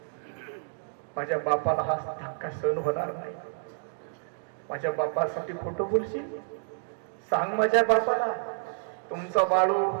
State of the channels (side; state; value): left; silent; digital silence